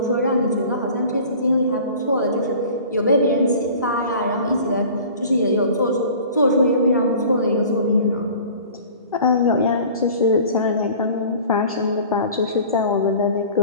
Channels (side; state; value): both; inverted; correlation -0.44